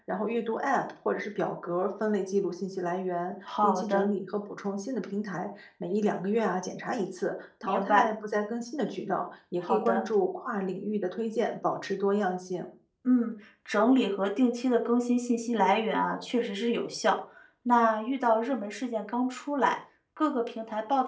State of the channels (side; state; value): both; identical; correlation 1.00